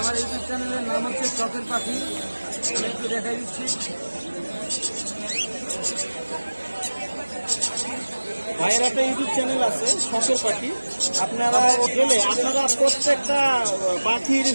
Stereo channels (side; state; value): both; inverted; correlation -1.00